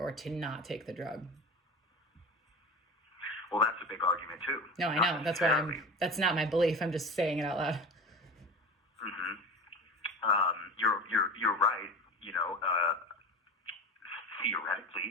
to not take the drug. Well, that's a big argument too. No, I Not know. That's why necessarily. that's not my belief. I'm just saying it out loud. Mm-hmm. You're right. You know,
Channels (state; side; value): normal; both; correlation 0.31